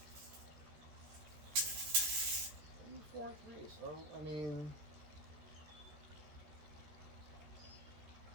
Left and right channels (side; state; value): left; late; 13 ms